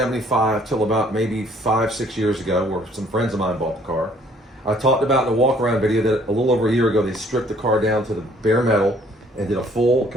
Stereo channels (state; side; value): normal; both; correlation 0.60